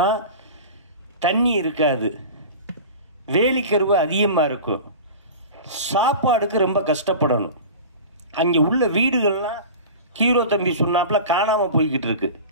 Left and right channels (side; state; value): both; inverted; correlation -0.34